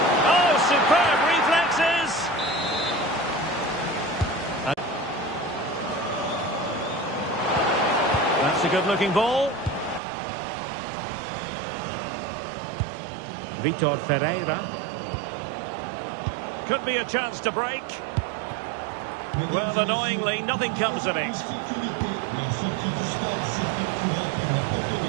Oh, superb reflexes! That's a good-looking ball. Vitor Ferreira. Could be a chance to break. Well, annoyingly, nothing comes of it.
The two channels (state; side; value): drops out; left; at 10.0 s